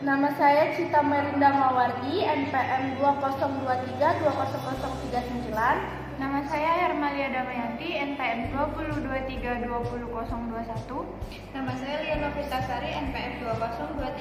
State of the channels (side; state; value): both; identical; correlation 1.00